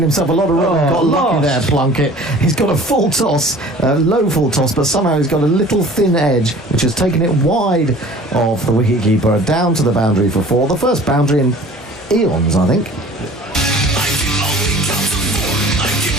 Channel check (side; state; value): both; normal; correlation 0.46